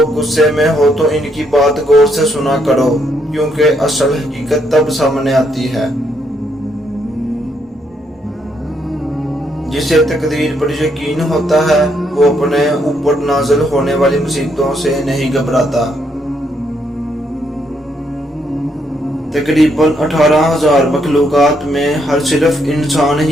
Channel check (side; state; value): both; normal; correlation 0.74